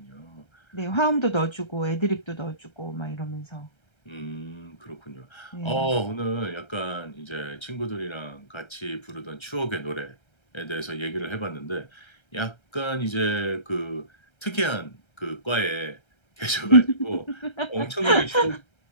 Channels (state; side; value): late; right; 1.3 ms